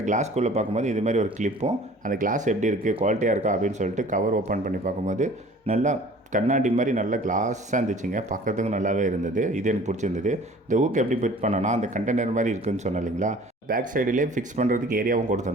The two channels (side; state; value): both; normal; correlation 0.48